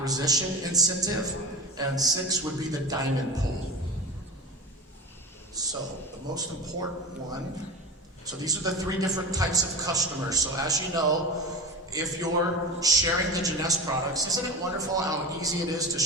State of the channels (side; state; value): both; normal; correlation 0.29